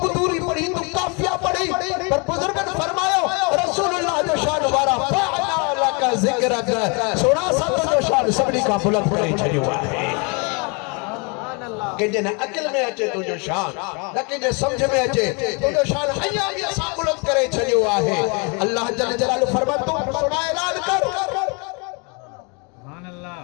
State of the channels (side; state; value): right; quieter; 32.8 dB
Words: कुदूरी पढ़ी तू काफिया पढ़ी पर बुजुर्गन फरमायो रसूलुल्लाह जो शान वारा फअला लक ज़िक्रक सोना सत जो शान सभनी का बुलंद करे छडियो आहे। के जन अकल में अचे तुझो शान न के समझ में अचे तुझो शान हया भी असा बुलंद करे छडियो आहे। अल्लाह जल जलालु फरमा तू सुना ऐलान कर सुभान अल्लाह